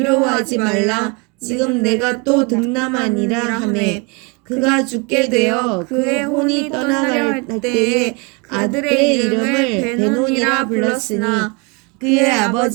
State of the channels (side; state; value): left; quieter; 30.9 dB